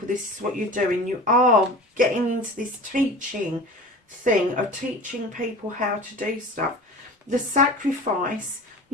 this is what you're doing. You are getting into this teaching thing of teaching people how to do stuff. The sacrifice,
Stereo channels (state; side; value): normal; both; correlation 0.37